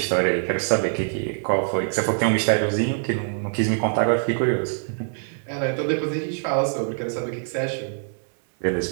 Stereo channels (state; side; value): silent; left; digital silence